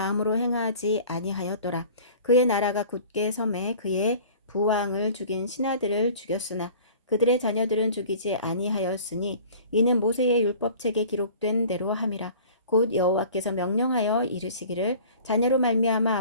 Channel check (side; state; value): both; inverted; correlation -0.45